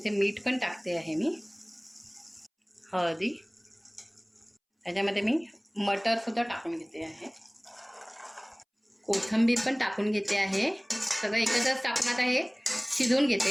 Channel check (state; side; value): identical; both; correlation 1.00